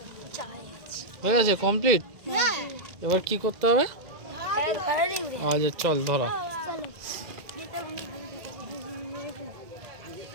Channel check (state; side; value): late; left; 2.1 ms